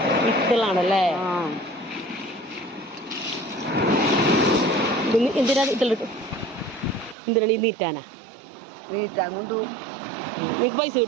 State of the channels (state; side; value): drops out; left; at 7.2 s